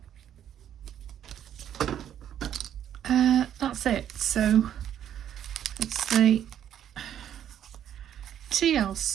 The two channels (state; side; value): quieter; left; 10.2 dB